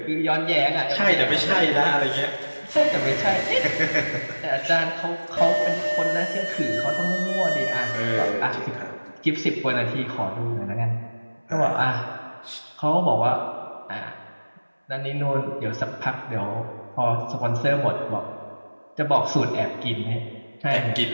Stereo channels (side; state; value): both; inverted; correlation -1.00